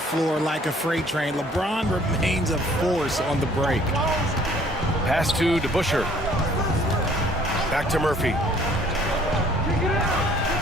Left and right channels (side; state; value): both; normal; correlation 0.58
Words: like a freight train. LeBron remains a force on the break. Pass to DeBusschere. Back to Murphy.